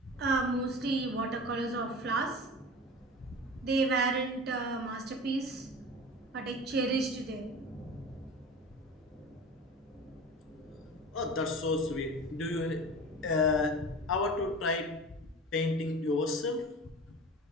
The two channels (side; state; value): both; normal; correlation 0.35